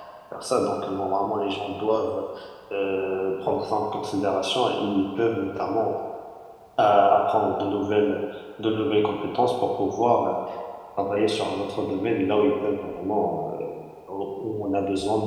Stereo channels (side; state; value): both; identical; correlation 1.00